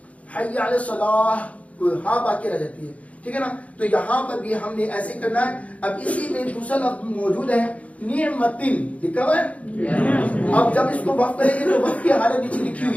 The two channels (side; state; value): right; late; 0.066 ms